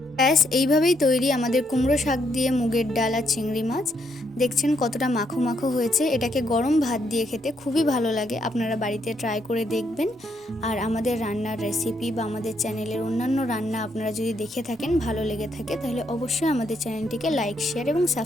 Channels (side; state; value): both; normal; correlation 0.75